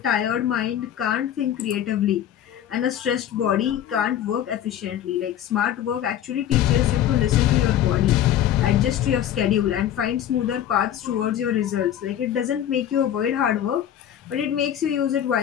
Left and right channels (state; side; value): quieter; right; 10.8 dB